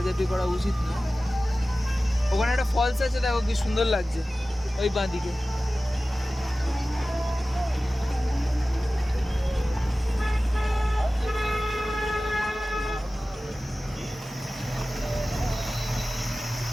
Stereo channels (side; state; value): both; normal; correlation 0.96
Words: করা উচিত না। ওখানে একটা ফলস আছে, দেখো কি সুন্দর লাগছে ওই বাঁ দিকে।